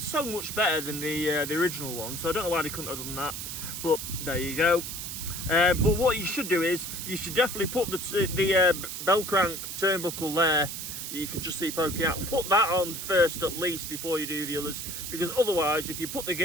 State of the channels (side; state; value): right; noise; hiss, 6 dB below the sound